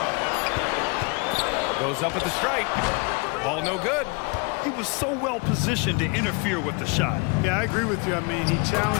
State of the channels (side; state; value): right; quieter; 30.2 dB